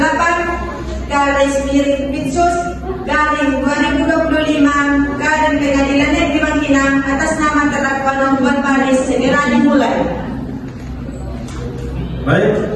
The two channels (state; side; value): identical; both; correlation 1.00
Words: Garing Pengadilan Negeri Bangkinang atas nama terdakwa Nofwan Faris segera dimulai.